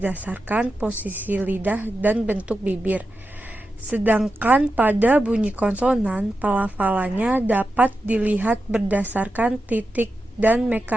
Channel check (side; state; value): both; normal; correlation 0.90